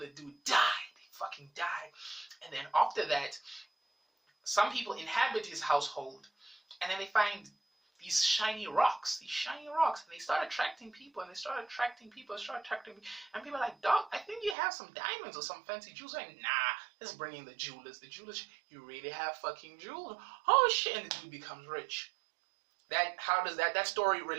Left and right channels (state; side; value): drops out; left; at 14.6 s